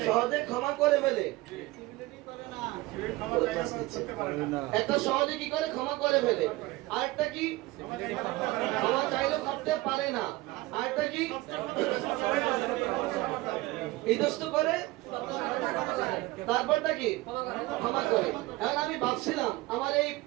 সহজে ক্ষমা করে ফেলে। একটা সহজে কি করে ক্ষমা করে ফেলে, আরেকটা কি ক্ষমা চাইলেও করতে পারে না, আরেকটা কি ইতস্ত করে, তারপরটা কি ক্ষমা করে। এখন আমি ভাবছিলাম আমার এই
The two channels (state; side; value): quieter; left; 20.0 dB